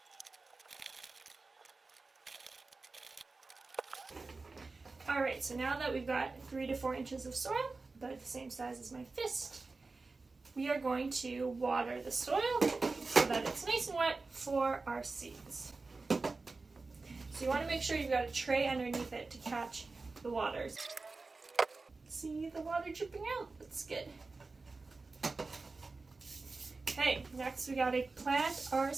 Alright, so now that we've got 3 to 4 inches of soil, about the same size as my fist, we are going to water the soil so that it's nice and wet for our seeds. So you want to make sure you've got a tray underneath it to catch the water. See the water dripping out? That's good. Okay, next we gotta plant our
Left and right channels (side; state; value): left; quieter; 3.8 dB